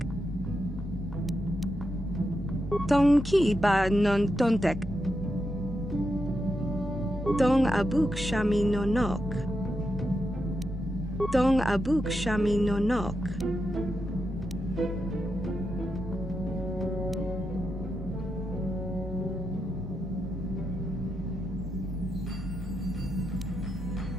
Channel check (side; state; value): both; normal; correlation 0.86